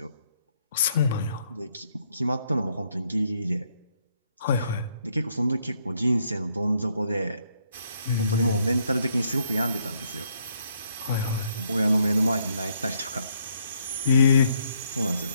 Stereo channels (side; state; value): both; inverted; correlation -0.72